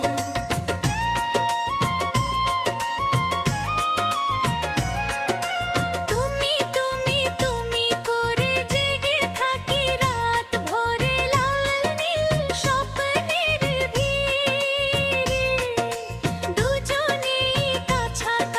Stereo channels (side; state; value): both; identical; correlation 1.00